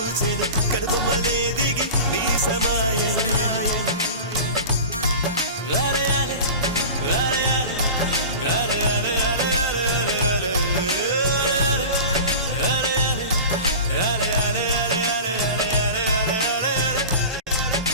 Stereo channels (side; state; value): both; inverted; correlation -0.34